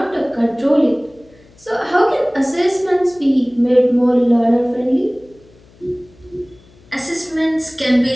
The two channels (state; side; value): noise; left; hum, 28 dB below the sound